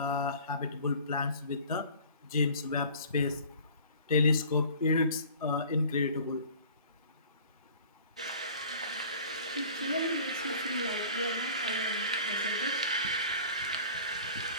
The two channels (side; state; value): both; inverted; correlation -0.46